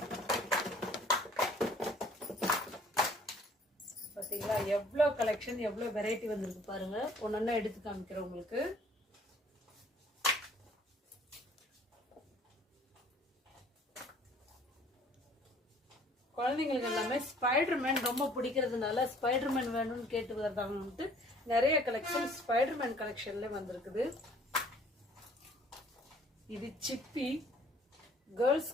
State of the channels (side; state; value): both; normal; correlation 0.56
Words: பார்த்தீங்களா எவ்வளோ கலெக்ஷன், எவ்வளோ வெரைட்டி வந்திருக்கு பாருங்க. ஒன்னொன்னா எடுத்து காமிக்கிறேன் உங்களுக்கு. குழந்தைங்களுக்கு எல்லாமே ஸ்பைடர்மேன் ரொம்ப பிடிக்கிறதுனால ஸ்பைடர்மேன் வேணும்னு கேட்டு வருதாங்கன்ட்டு நிறைய கலெக்ஷன் ஸ்பைடர்மேன் கலெக்ஷன்ல வந்திருக்குது. இது சிப்பி